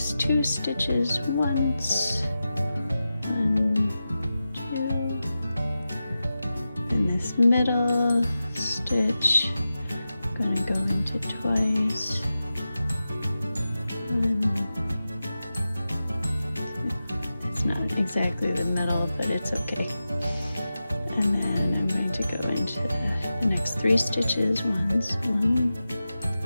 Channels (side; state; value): both; inverted; correlation -0.93